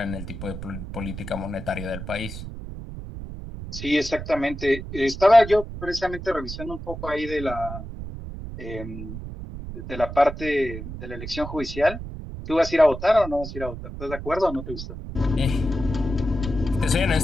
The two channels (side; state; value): right; noise; rumble, 9 dB below the sound